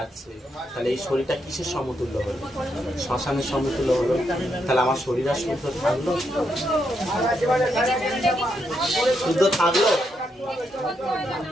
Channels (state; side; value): normal; both; correlation 0.80